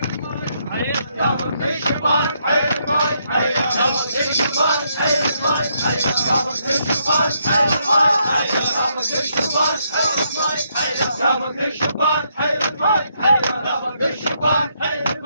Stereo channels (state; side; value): inverted; both; correlation -0.76